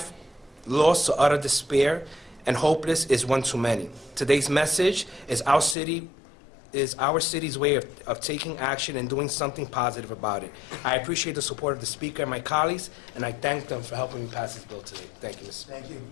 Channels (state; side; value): drops out; right; at 5.8 s